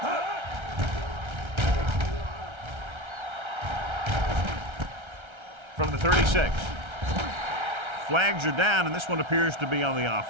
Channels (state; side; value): late; left; 1.3 ms